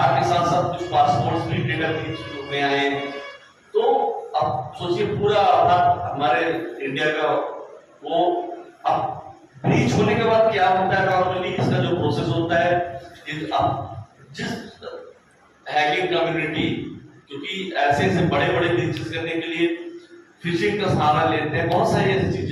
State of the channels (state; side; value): identical; both; correlation 1.00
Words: के साथ साथ कुछ पासपोर्ट भी डेटा ब्रीच में आए। तो अब सोचिए पूरा आधार हमारे इंडिया का वो अब ब्रीच होने के बाद क्या होता है, नॉर्मली इसका जो प्रोसेस होता है, जिस हैकिंग कम्युनिटी, क्योंकि ऐसे ऐसे बड़े बड़े ब्रीचेस करने के लिए फिशिंग का सहारा लेते हैं, बहुत सारी ऐसी